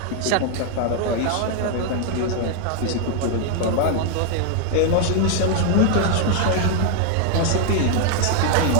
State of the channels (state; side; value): different; both; correlation 0.00